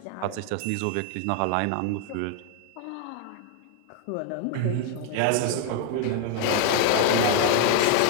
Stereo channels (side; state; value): both; different; correlation 0.00